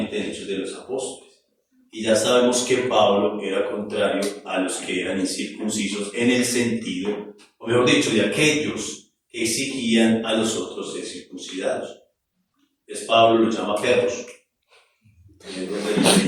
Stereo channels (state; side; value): identical; both; correlation 1.00